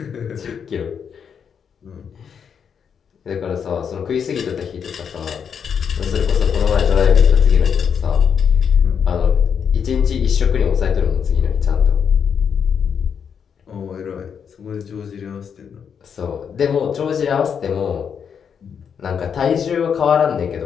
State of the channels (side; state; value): right; quieter; 7.2 dB